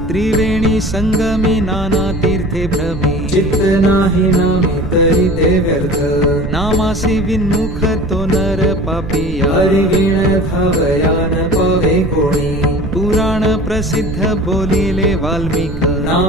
त्रिवेणी संगमी नाना तीर्थे भ्रमी चित्त नाही नामी तरी ते व्यर्थ नामासी विन्मुख तो नर पापिया हरी वीण धावयान पावे कोणी पुराण प्रसिद्ध बोलिले वाल्मिक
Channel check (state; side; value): noise; right; rumble, 8 dB below the sound